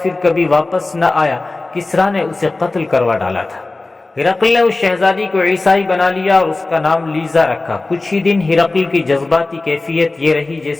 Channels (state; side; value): quieter; right; 3.2 dB